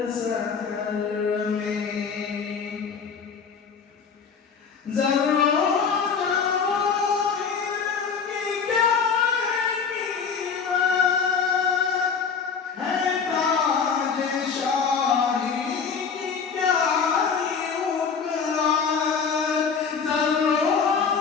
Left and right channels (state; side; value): quieter; right; 6.0 dB